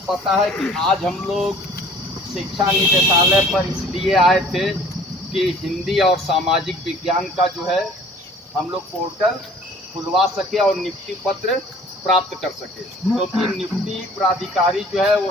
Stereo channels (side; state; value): both; normal; correlation 0.51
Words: पता है कि आज हम लोग शिक्षा निदेशालय पर इसलिए आए थे कि हिंदी और सामाजिक विज्ञान का जो है हम लोग पोर्टल खुलवा सके और नियुक्ति पत्र प्राप्त कर सके, क्योंकि नियुक्ति प्राधिकारी जो है वो